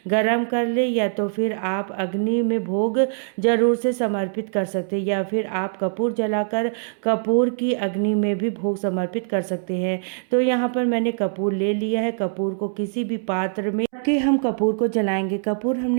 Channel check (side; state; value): left; silent; 63 dB below the other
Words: गरम कर ले, या तो फिर आप अग्नि में भोग जरूर से समर्पित कर सकते हैं, या फिर आप कपूर जलाकर कपूर की अग्नि में भी भोग समर्पित कर सकते हैं। तो यहाँ पर मैंने कपूर ले लिया है। कपूर को किसी भी पात्र में रख के हम कपूर को जलाएंगे। कपूर